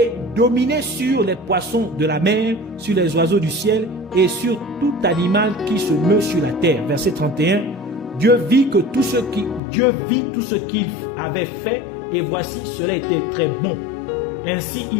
dominez sur les poissons de la mer, sur les oiseaux du ciel et sur tout animal qui se meut sur la terre. Verset 31, Dieu vit tout ce qu'il avait fait et voici cela était très bon. Ainsi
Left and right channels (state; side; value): drops out; right; at 9.6 s